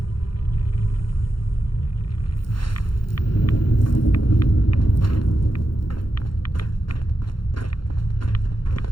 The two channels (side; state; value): right; late; 0.72 ms